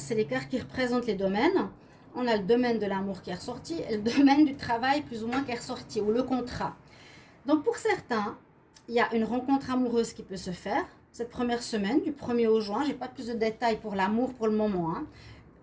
que c'est les cartes qui représentent les domaines. On a le domaine de l'amour qui est ressorti et le domaine du travail plus ou moins qui est ressorti, ou le contrat. Donc pour certains, il y a une rencontre amoureuse qui peut se faire cette première semaine, du 1er au juin. Je n'ai pas plus de détails pour l'amour pour le moment. Hein.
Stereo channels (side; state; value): both; identical; correlation 1.00